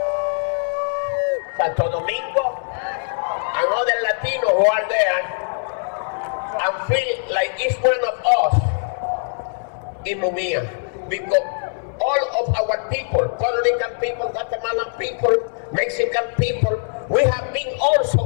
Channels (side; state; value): right; silent; 64 dB below the other